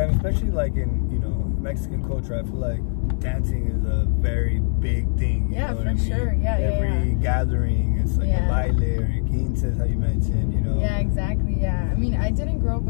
Especially in, you know, Mexican culture, I feel like dancing is a very big thing. You know what I mean? Sure. Every gathering, it's a baile or a quinces, how you mentioned, you know. Yeah, exactly. Yeah, I mean, I didn't grow up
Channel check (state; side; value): silent; right; digital silence